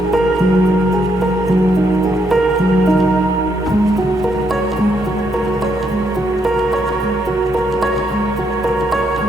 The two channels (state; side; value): normal; both; correlation 0.75